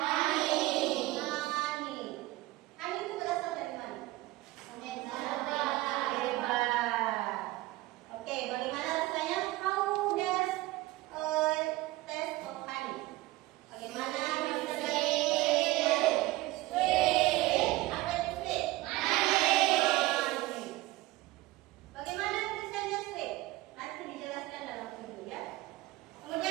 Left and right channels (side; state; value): left; quieter; 18.6 dB